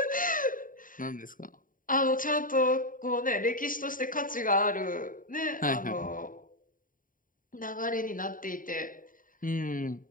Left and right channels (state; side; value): late; right; 0.39 ms